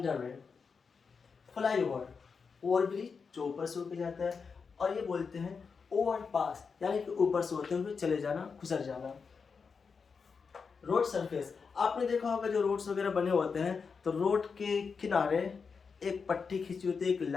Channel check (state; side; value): quieter; right; 5.4 dB